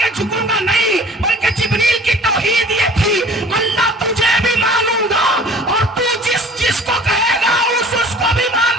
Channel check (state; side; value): normal; both; correlation 0.47